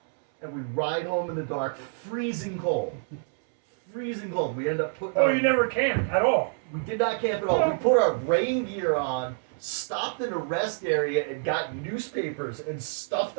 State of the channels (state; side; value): silent; left; 60 dB below the other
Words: And we ride home in the dark, freezing cold. Freezing cold. We end up putting Oh, our- you never camped at all. we did not camp at all. We put our rain gear on, stopped in a rest area, and got newspapers and stuffed